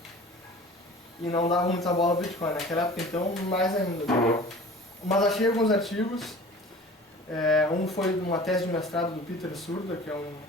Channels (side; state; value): both; normal; correlation 0.42